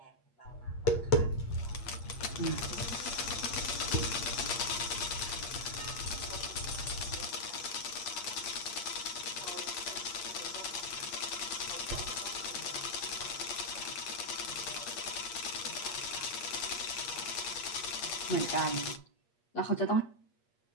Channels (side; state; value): right; late; 8.5 ms